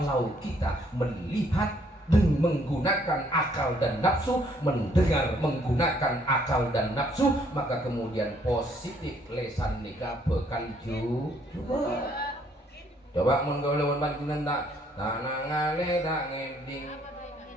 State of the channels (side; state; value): both; normal; correlation 0.66